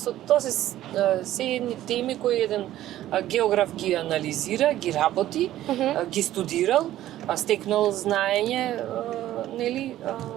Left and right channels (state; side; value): quieter; left; 13.6 dB